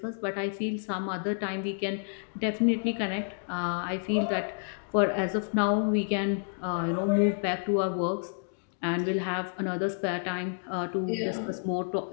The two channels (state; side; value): silent; right; digital silence